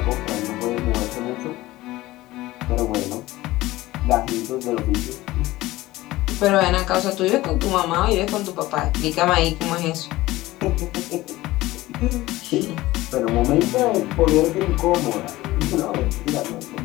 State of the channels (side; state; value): right; quieter; 17.8 dB